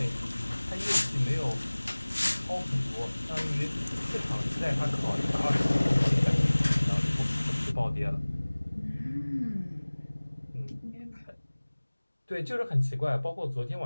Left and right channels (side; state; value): both; inverted; correlation -1.00